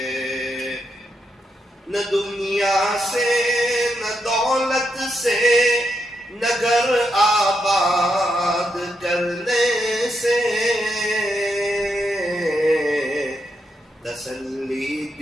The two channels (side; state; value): both; normal; correlation 0.82